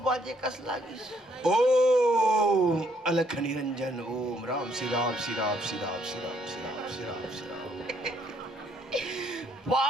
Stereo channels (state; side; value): normal; both; correlation 0.69